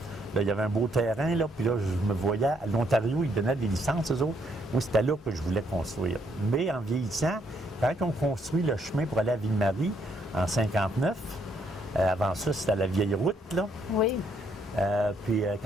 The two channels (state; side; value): normal; both; correlation 0.72